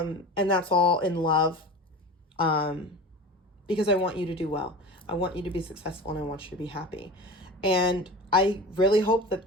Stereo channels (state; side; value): normal; both; correlation 0.32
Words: that's all in love. Because I want you to do well. I want you to be successful, and I want you to be happy. And I really hope that